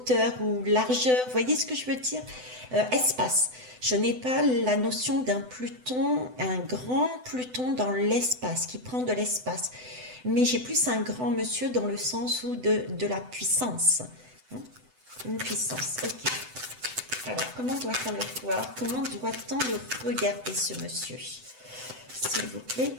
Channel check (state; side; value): late; left; 7.9 ms